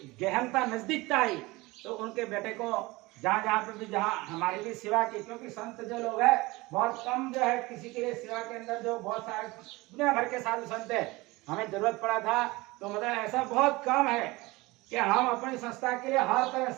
गहनता, नजदीकता आई। तो उनके बेटे को जहाँ जहाँ पे भी, जहाँ हमारी भी सेवा की, क्योंकि संत जो लोग है बहुत कम जो है किसी के लिए सेवा के अंदर, जो बहुत सारे दुनिया भर के साधु संत है, हमें जरूरत पड़ा था तो मतलब ऐसा बहुत कम है कि हम अपनी संस्था के लिए हर तरह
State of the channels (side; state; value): left; quieter; 21.9 dB